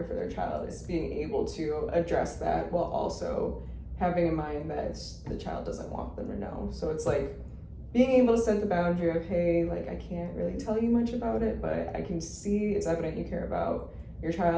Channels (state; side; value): identical; both; correlation 1.00